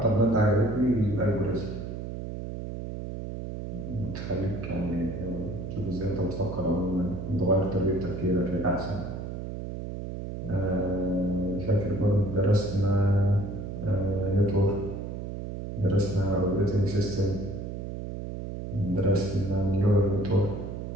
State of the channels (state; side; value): noise; right; hum, 7 dB below the sound